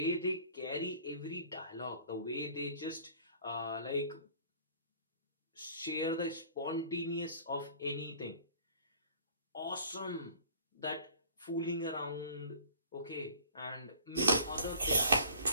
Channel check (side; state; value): both; inverted; correlation -0.50